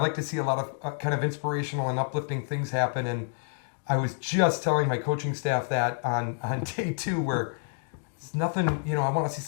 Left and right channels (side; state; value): right; silent; digital silence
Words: to see a lot of kind of inspirational and uplifting things happen. And I was just telling my coaching staff that on day 2 where it's nothing, I want to see